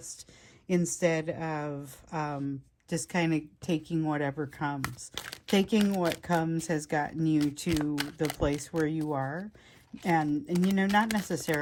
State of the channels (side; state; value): both; identical; correlation 1.00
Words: instead of just kind of taking whatever comes. Taking what comes has gotten you to the place where you are. And you know, not